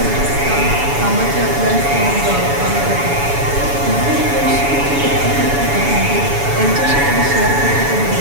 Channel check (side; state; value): left; late; 7.1 ms